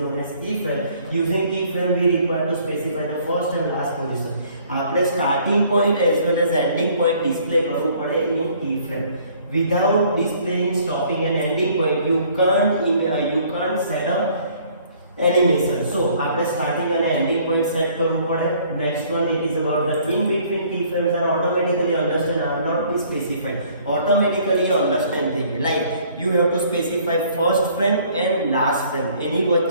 known as keyframe. Using keyframe we require to specify the first and last position. આપણે starting point as well as ending point display કરવું પડે in keyframe. Without displaying stopping and ending point you can't set up animation. So આપણે starting and ending point set કરવું પડે. Next one, it is about the in between keyframes are automatically understand are not be specified. Automatically understand thing like you have to specify first frame and last frame. એની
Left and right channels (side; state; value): both; inverted; correlation -0.59